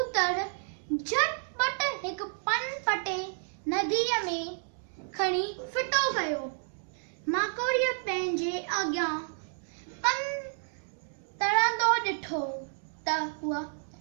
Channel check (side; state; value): left; silent; digital silence